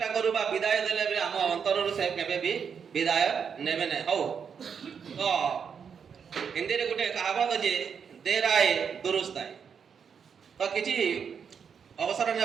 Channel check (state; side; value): quieter; left; 6.9 dB